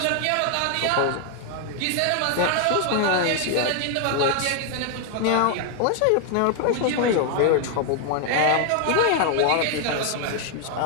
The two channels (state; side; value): different; both; correlation 0.01